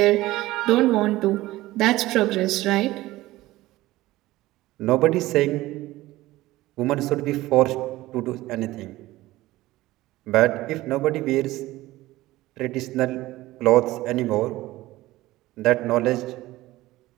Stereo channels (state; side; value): quieter; left; 17.5 dB